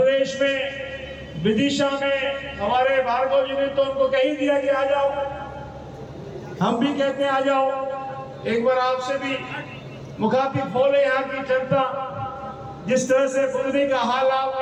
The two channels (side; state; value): both; identical; correlation 1.00